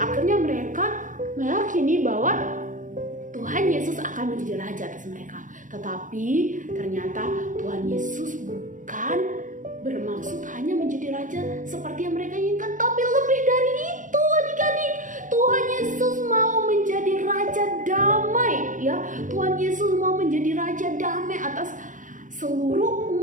mereka meyakini bahwa Tuhan Yesus akan menjadi raja atas mereka. Tetapi ternyata Tuhan Yesus bukan bermaksud hanya menjadi raja seperti yang mereka inginkan, tapi lebih dari itu, adik-adik. Tuhan Yesus mau menjadi raja damai, ya. Tuhan Yesus mau menjadi raja damai atas seluruh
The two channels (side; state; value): left; late; 0.38 ms